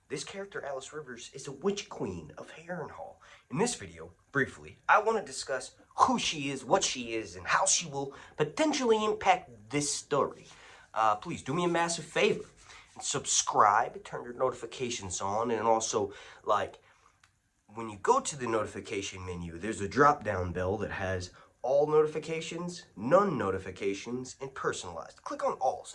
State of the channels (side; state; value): both; identical; correlation 1.00